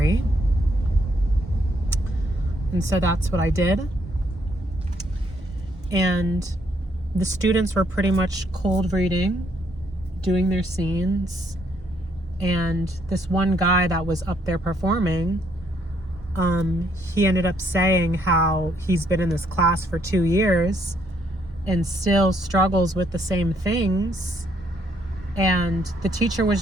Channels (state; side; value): normal; both; correlation 0.71